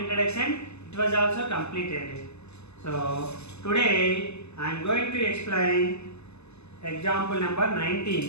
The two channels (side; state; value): right; late; 0.80 ms